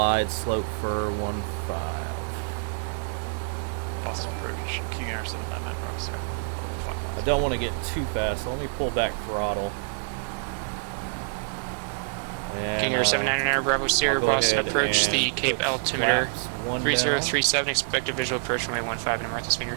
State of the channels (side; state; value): left; silent; digital silence